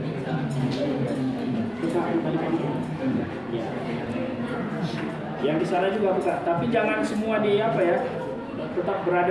Yang di sana juga buka, tapi jangan semua di apa ya, tetap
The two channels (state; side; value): noise; right; rumble, 29 dB below the sound